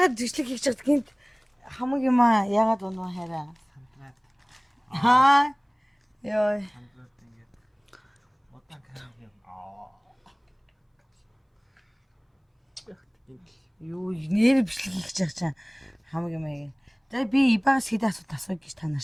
бичлэг хийж чаддаг гинт хамаг юм аа яагаад унаа хараа. Ёо. Юу нэр бичлэг хийж байгаа чинь хамаг юм аа. За би ибагас хэд асуулт гэж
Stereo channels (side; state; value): both; identical; correlation 1.00